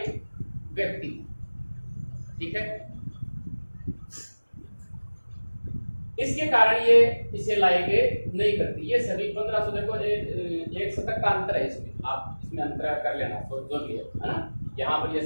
व्यक्ति। ठीक है, इसके कारण ये इसे लाएंगे नहीं करती। ये सभी 1500, देखो एक शतक का अंतर है इसमें, आप इसमें अंतर कर लेना तो जो भी है ना। यहाँ पर ये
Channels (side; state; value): both; inverted; correlation -1.00